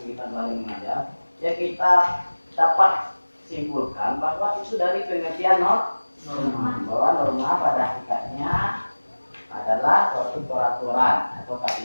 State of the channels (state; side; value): inverted; both; correlation -1.00